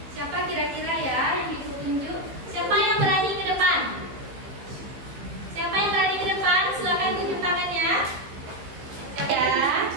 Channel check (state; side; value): late; left; 15 ms